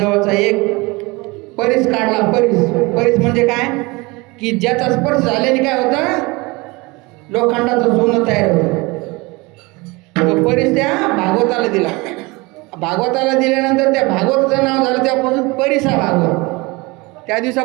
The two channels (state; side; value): quieter; left; 24.7 dB